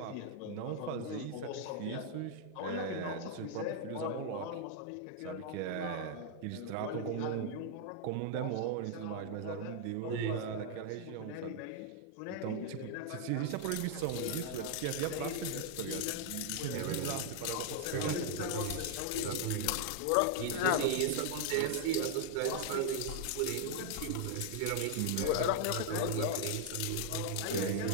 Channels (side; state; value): both; different; correlation 0.00